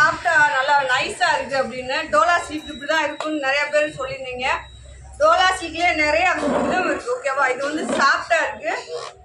நல்லா நைஸா இருக்கு அப்படின்னு. டோலா சில்க் இப்படிதான் இருக்குன்னு நிறைய பேர் சொல்லியிருந்தீங்க. டோலா சில்க்லயே நிறைய இதுவும் இருக்கு. ஓகேவா? இது வந்து சாஃப்டா இருக்கு,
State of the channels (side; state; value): both; identical; correlation 1.00